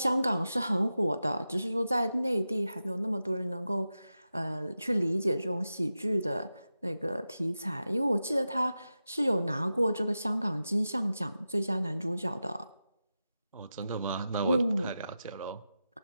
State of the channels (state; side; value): inverted; both; correlation -0.92